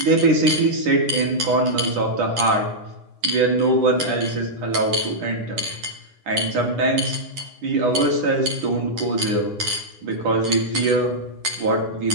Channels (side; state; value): left; late; 9.9 ms